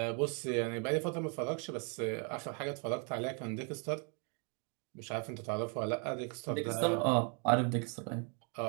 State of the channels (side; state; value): left; quieter; 38.6 dB